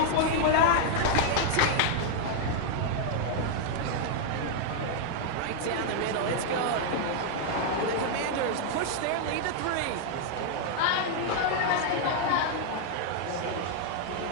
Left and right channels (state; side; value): different; both; correlation 0.00